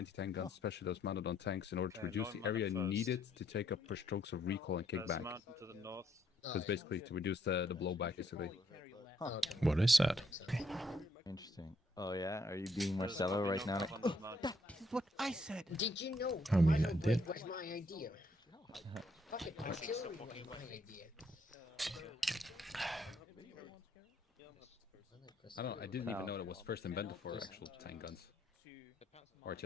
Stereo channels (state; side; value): normal; both; correlation 0.71